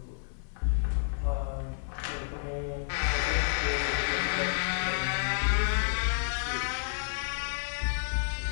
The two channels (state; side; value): silent; right; 58 dB below the other